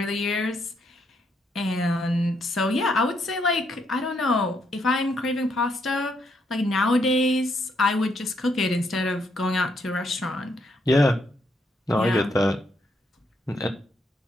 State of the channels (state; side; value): normal; both; correlation 0.75